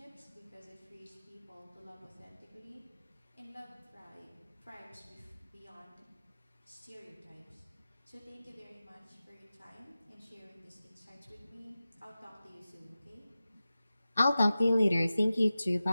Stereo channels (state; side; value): inverted; both; correlation -0.95